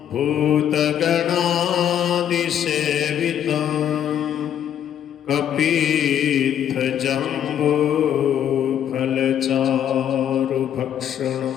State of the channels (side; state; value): right; quieter; 9.8 dB